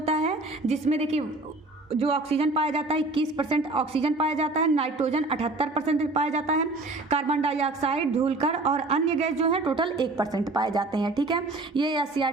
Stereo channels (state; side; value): quieter; left; 3.1 dB